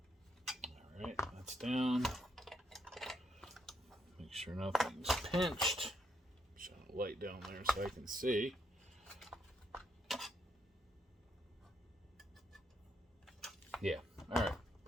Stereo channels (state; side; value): normal; both; correlation 0.76